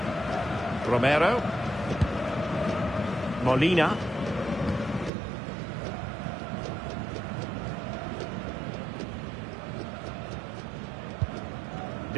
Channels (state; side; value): drops out; left; at 5.1 s